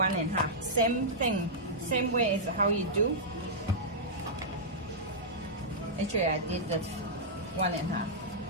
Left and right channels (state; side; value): normal; both; correlation -0.11